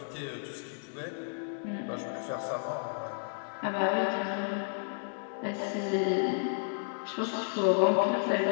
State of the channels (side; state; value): right; silent; digital silence